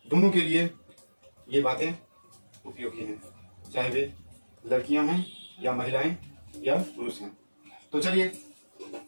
दोनों के लिए ये बातें उपयोगी हैं, चाहे वे लड़कियां हैं या महिलाएं या पुरुष हैं। तो चलिए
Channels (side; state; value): both; inverted; correlation -1.00